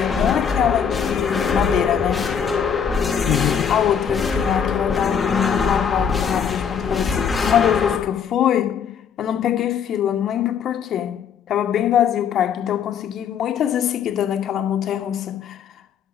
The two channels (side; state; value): right; quieter; 7.6 dB